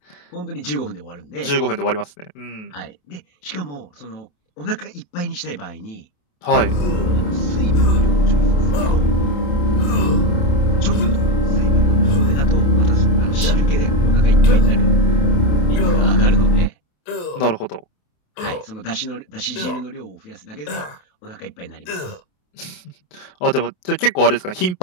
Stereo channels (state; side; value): late; right; 28 ms